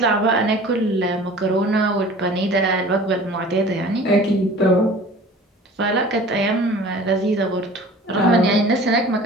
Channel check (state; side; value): normal; both; correlation 0.44